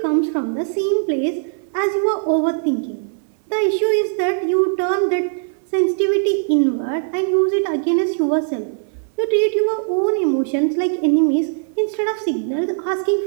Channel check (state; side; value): silent; left; 62 dB below the other